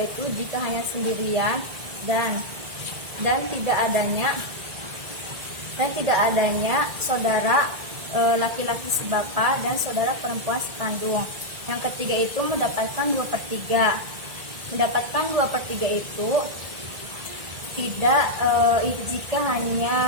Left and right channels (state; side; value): late; left; 1.9 ms